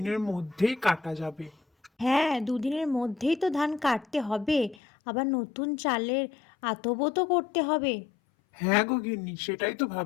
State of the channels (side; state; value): right; drops out; at 4.8 s